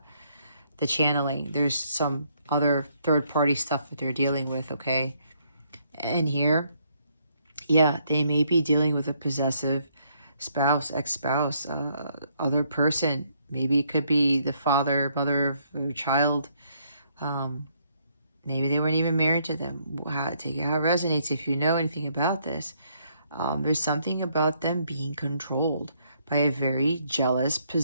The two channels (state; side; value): inverted; both; correlation -0.70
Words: channeling. There's some other third-party stuff that they're dealing with, okay? And here, yeah, they may be dealing with a possessive spouse, ex-spouse, other person. Maybe it could be the father, mother of a child. Maybe they weren't even married to them. Take it how it resonates if you know anything about this. There's something about them being controlled by a very jealous,